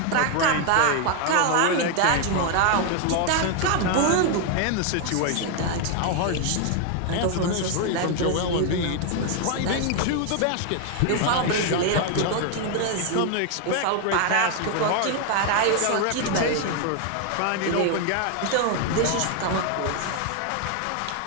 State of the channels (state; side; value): different; both; correlation 0.00